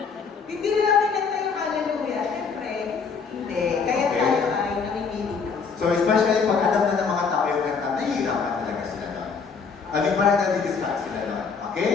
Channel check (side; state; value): right; quieter; 5.5 dB